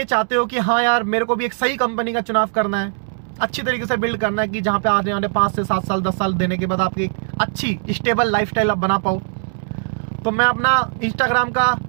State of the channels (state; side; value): silent; left; 66 dB below the other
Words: चाहते हो कि हाँ यार मेरे को भी एक सही कंपनी का चुनाव करना है, अच्छी तरीके से बिल्ड करना है कि जहाँ पे आने वाले 5 से 7 साल 10 साल देने के बाद आपकी एक अच्छी स्टेबल लाइफस्टाइल आप बना पाओ, तो मैं अपना इंस्टाग्राम का